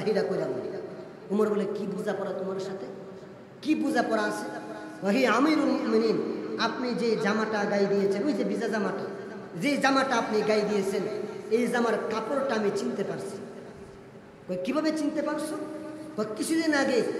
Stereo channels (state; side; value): identical; both; correlation 1.00